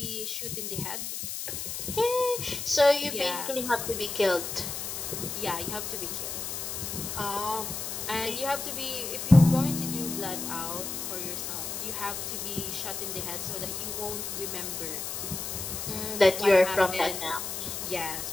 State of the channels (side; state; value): left; noise; hiss, 5 dB below the sound